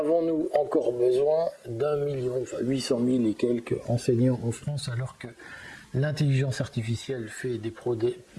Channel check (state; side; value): identical; both; correlation 1.00